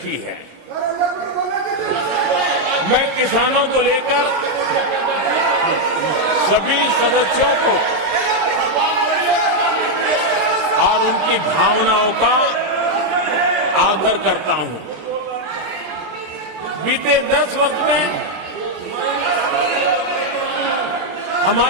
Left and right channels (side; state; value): left; late; 20 ms